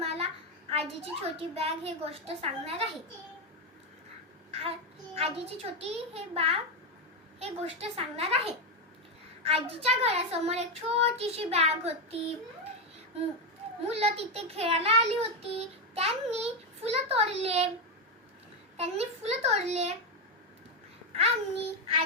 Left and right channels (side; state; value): both; normal; correlation 0.07